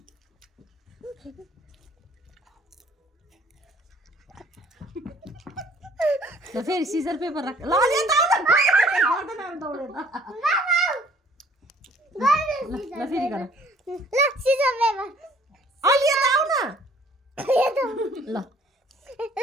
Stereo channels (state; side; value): normal; both; correlation 0.57